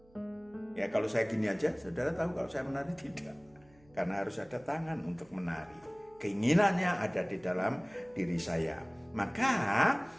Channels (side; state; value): right; noise; hum, 29 dB below the sound